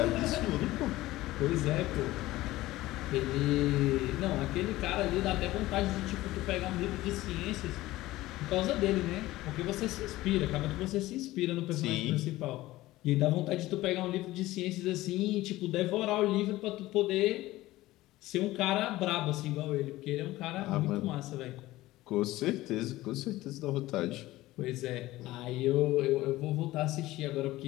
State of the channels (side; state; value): right; quieter; 17.3 dB